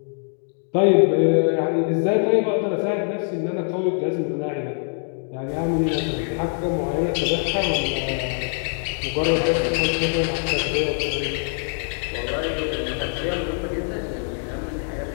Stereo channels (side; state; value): right; silent; 59 dB below the other